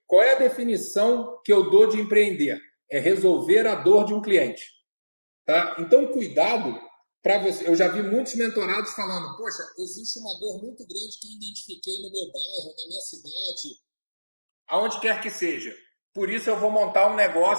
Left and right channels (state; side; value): inverted; both; correlation -1.00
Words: Qual é a definição que eu dou de empreender? É resolver a dor de um cliente, tá? Então, cuidado para você. Eu já vi muitos mentorados falando, poxa, existe uma dor muito grande que eu identifiquei no meu bairro, na minha cidade, aonde quer que seja. Por isso eu vou montar um